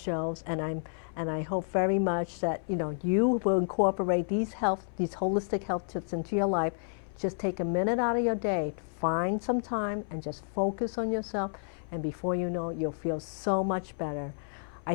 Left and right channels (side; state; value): right; silent; 57 dB below the other